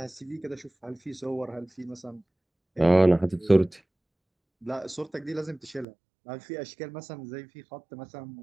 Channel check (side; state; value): left; drops out; at 5.9 s